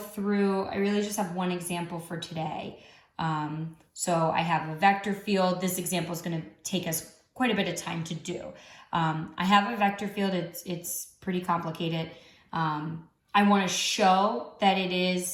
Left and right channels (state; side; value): identical; both; correlation 1.00